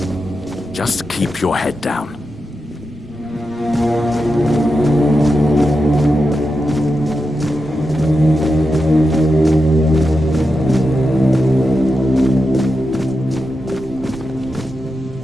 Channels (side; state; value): both; normal; correlation 0.89